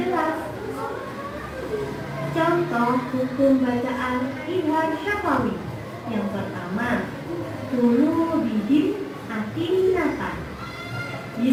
Contoh hukum bacaan izhar syafawi. Yang pertama, tulu bihim atinatan. Di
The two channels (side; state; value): both; identical; correlation 1.00